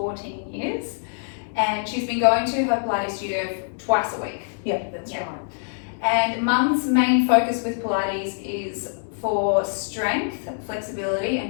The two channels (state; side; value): silent; right; digital silence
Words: years. And she's been going to her Pilates studio twice a week. Yeah, that's right. And Mum's main focus with Pilates is for strength, flexibility